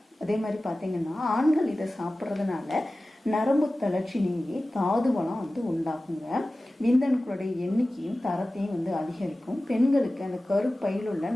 அதே மாதிரி பார்த்தீங்கன்னா ஆண்கள் இதை சாப்பிட்றதுனால நரம்பு தளர்ச்சி நீங்கி தாது வளம் உண்டாகுங்க. விந்தணுக்களுடைய எண்ணிக்கையும் தரத்தையும் அதிகரிக்கும். பெண்களுக்கு அந்த கருப்பையில் உள்ள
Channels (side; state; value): both; normal; correlation 0.96